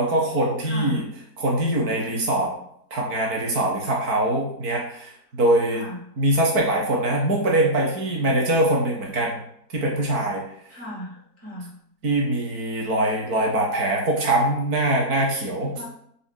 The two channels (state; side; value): late; left; 4.5 ms